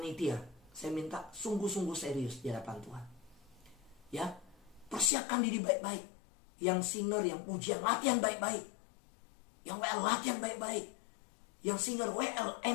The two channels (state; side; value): drops out; right; at 5.1 s